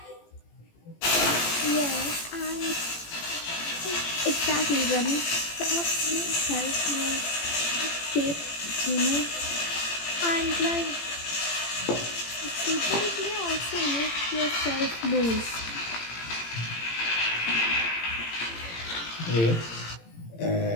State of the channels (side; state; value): right; late; 18 ms